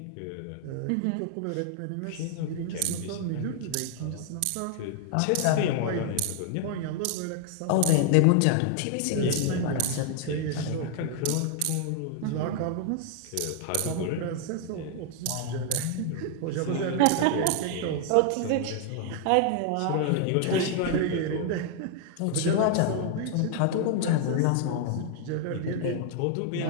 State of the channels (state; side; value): different; both; correlation 0.00